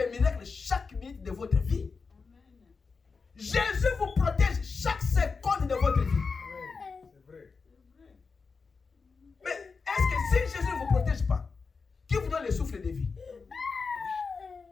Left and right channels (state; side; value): quieter; right; 4.8 dB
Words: miracles chaque minute de votre vie. Amen. Jésus vous protège chaque seconde de votre vie. C'est vrai. Mais est-ce que si Jésus ne vous protège pas, qui vous donne le souffle de vie?